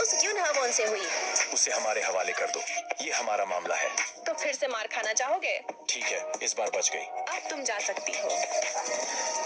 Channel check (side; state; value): both; identical; correlation 1.00